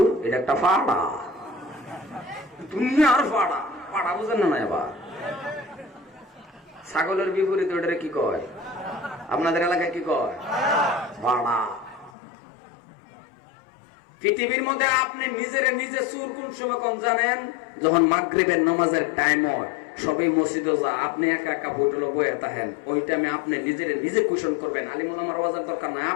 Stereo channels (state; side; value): drops out; right; at 12.1 s